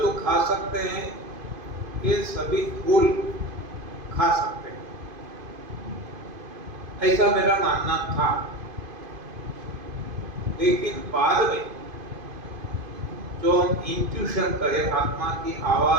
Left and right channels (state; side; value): late; left; 2.5 ms